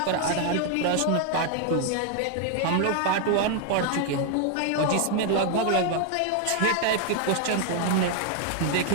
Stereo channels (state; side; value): different; both; correlation 0.00